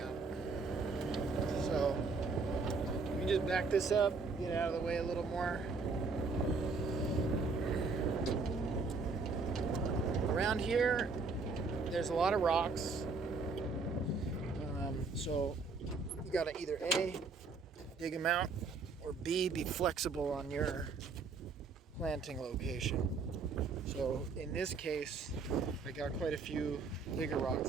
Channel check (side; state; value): left; quieter; 4.3 dB